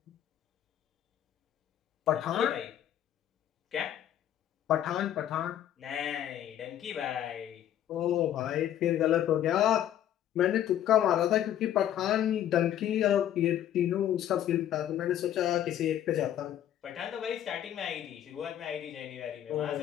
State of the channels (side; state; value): right; quieter; 11.1 dB